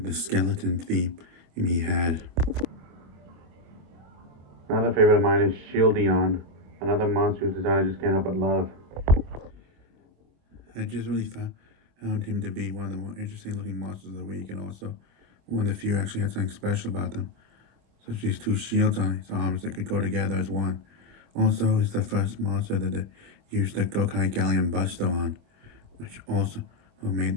skeleton theme he had. Another favorite of mine is Shieldion, another monster whose design I just can't help but love. I just really found him to be one of the more interesting looking monsters of the week, and also one of the few actually had something special about them, such as these two shields on his arms that could go together as one. Also, he's the first monster that they used the Gokai Galleon Buster on, which also made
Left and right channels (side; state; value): left; late; 24 ms